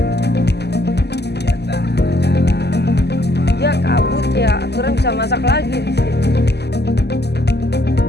Ya kabut ya, aturan bisa masak lagi di sini.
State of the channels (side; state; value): right; late; 0.49 ms